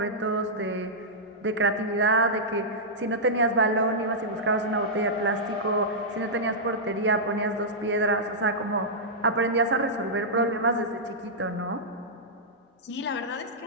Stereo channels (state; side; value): normal; both; correlation -0.11